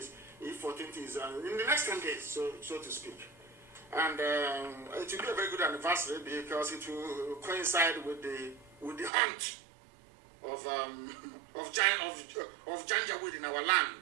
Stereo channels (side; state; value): left; drops out; at 9.1 s